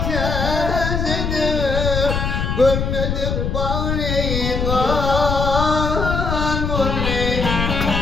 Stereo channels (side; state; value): left; noise; rumble, 1 dB below the sound